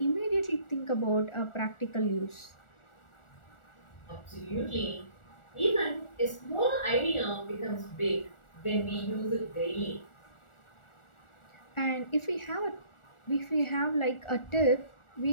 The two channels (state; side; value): late; right; 1.4 ms